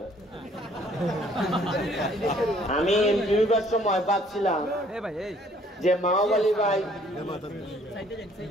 আমি এমপি হইবার সময় ভাবছিলাম যে মাওবালি ভাই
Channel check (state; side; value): normal; both; correlation 0.60